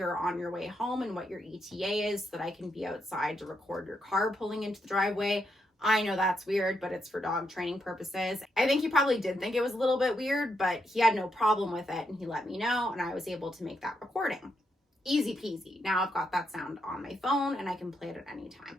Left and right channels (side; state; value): both; normal; correlation 0.81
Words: on your way home and what your ETA is so that I can be outside to record your car pulling into the driveway? I know that's weird, but it's for dog training purposes. I think he probably did think it was a little bit weird, but he had no problem with it and he let me know and I was able to make that recording. Easy peasy. Now I've got that sound on my phone and I can play it at any time.